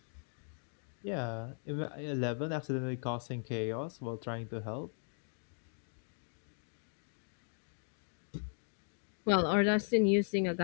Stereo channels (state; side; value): silent; right; 53 dB below the other